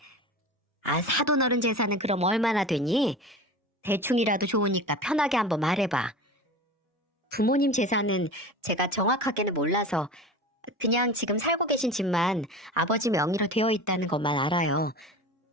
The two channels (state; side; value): normal; both; correlation 0.33